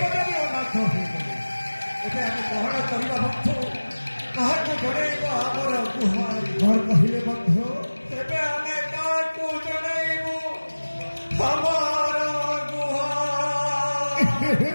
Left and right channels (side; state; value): both; inverted; correlation -1.00